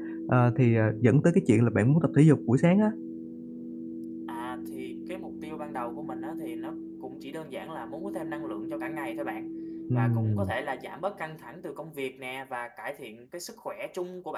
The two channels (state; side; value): identical; both; correlation 1.00